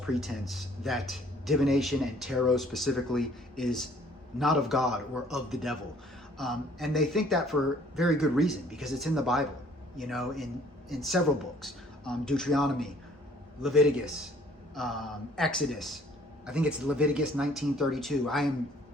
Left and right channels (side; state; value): both; normal; correlation 0.58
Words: that divination and tarot specifically is not of God or of the devil. And they think that for very good reason, because it's in the Bible, in several books, Deuteronomy, Leviticus, Exodus. I think it's Leviticus 19:32.